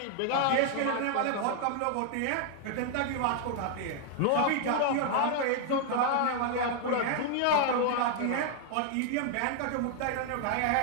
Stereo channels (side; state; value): both; different; correlation 0.00